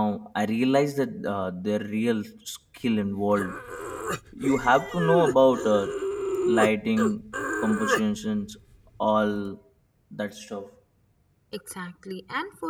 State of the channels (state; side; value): identical; both; correlation 1.00